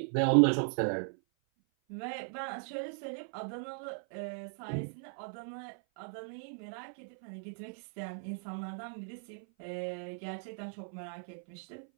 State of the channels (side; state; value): left; silent; 53 dB below the other